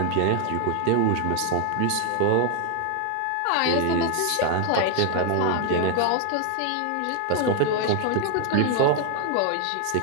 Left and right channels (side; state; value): both; different; correlation 0.00